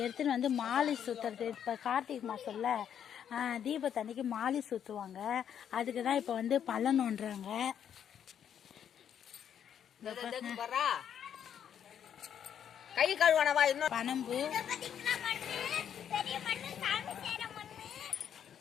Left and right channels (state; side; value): quieter; right; 9.0 dB